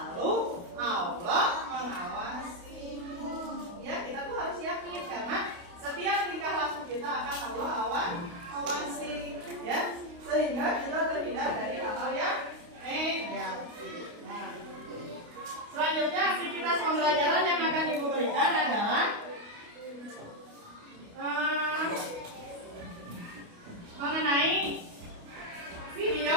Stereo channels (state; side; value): late; left; 28 ms